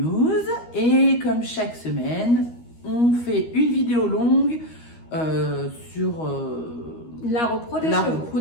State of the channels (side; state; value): right; late; 13 ms